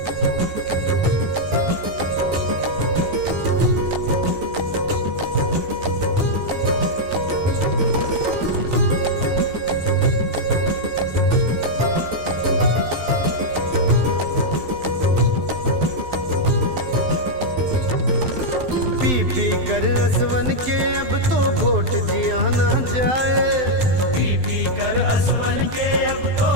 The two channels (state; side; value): late; left; 12 ms